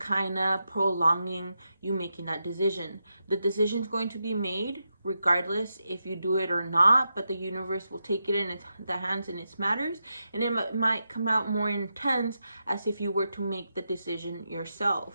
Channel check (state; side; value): inverted; both; correlation -0.87